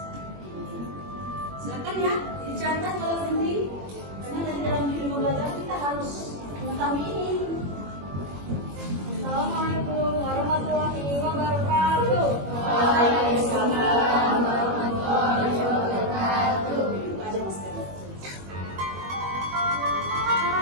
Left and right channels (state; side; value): late; left; 21 ms